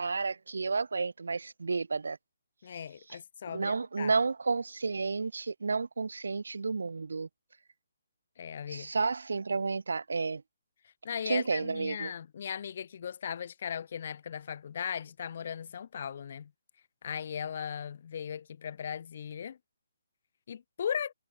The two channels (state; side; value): inverted; both; correlation -0.87